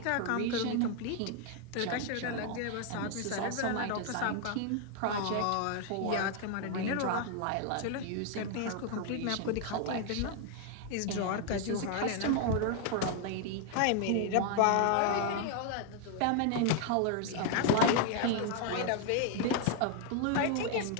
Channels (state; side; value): different; both; correlation 0.00